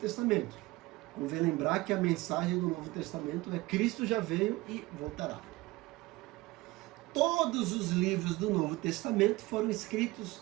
Convém lembrar que a mensagem do Novo Testamento é Cristo já veio e voltará. Todos os livros do Novo Testamento foram escritos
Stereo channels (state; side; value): quieter; left; 20.5 dB